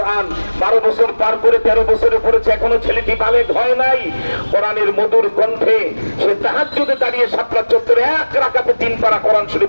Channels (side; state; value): both; inverted; correlation -1.00